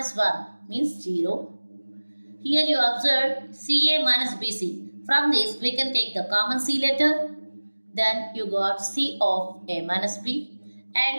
1 means 0. Here you observe CA minus BC. From this we can take the common C letter. Then you got C of A minus B.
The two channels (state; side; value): inverted; both; correlation -1.00